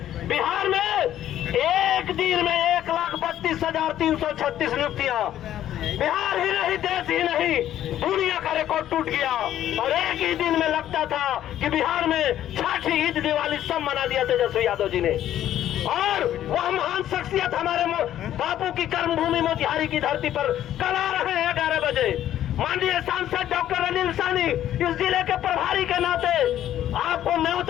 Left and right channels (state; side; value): quieter; right; 11.8 dB